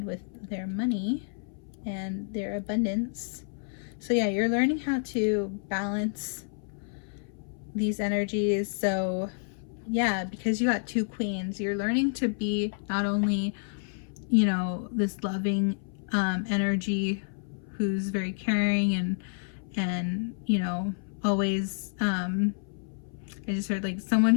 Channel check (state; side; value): silent; right; 57 dB below the other